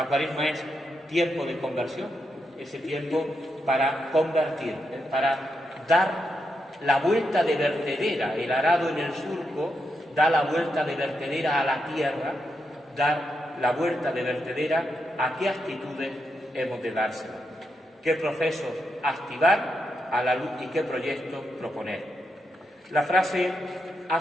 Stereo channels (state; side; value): normal; both; correlation 0.83